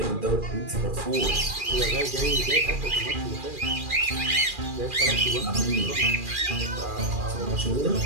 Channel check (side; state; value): left; late; 2.4 ms